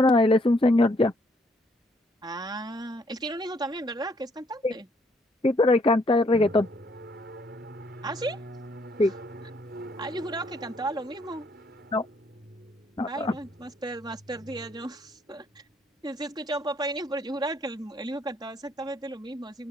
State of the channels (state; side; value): normal; both; correlation 0.68